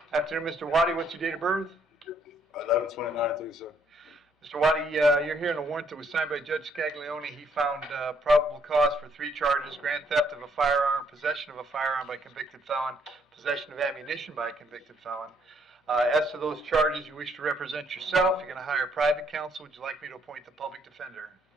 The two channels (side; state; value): both; normal; correlation 0.69